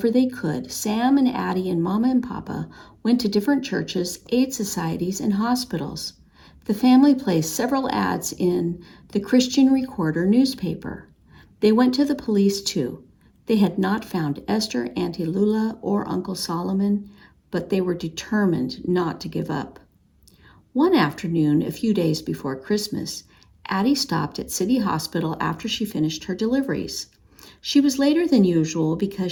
they could, Sam and Addy and Mama and Papa went to different churches, aid societies, and hospitals. The family placed several ads in the Christian Recorder newspaper. They went to the police too. They had not found Esther, Auntie Lula, or Uncle Solomon, but they were determined not to give up. One afternoon, a few days before Christmas, Addy stopped at City Hospital after she finished her deliveries. She was later than usual because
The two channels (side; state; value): both; identical; correlation 1.00